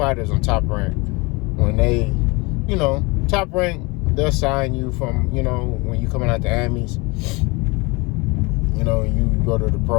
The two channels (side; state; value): right; quieter; 26.2 dB